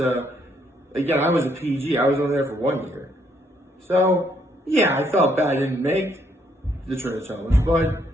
again, I was a PG, I was only there for 1 year. So, yeah, I felt bad I didn't make the Trinitones, but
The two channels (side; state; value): both; normal; correlation 0.71